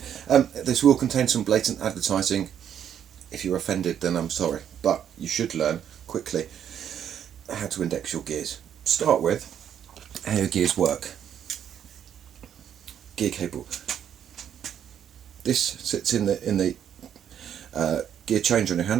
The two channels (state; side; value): quieter; left; 9.3 dB